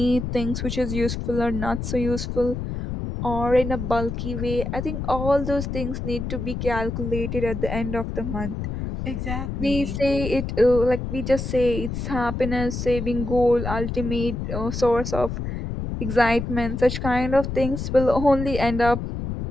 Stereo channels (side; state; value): left; noise; rumble, 4 dB below the sound